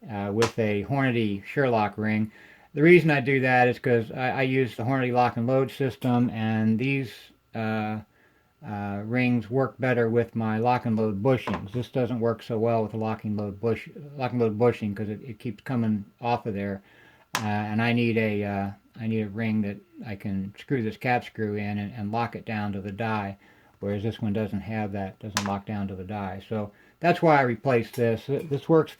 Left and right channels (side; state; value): both; identical; correlation 1.00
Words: with a Hornady Sherlock ring. The reason I do that is because I use the Hornady lock and load system, and these rings work better with my lock and load bushings. This doesn't work so well with the lock and load bushing because it keeps coming off of there, and I need a ring that I can screw this cap screw in and lock it down to the die, whereas this one doesn't have that, doesn't lock down to the die. So that's why I replaced this. This works